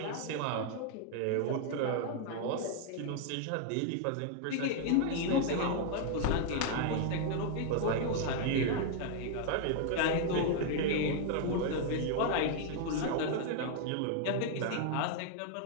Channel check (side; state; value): both; different; correlation 0.00